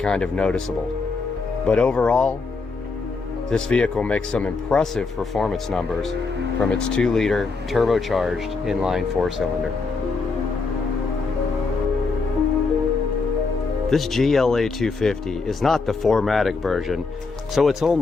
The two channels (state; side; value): quieter; right; 4.2 dB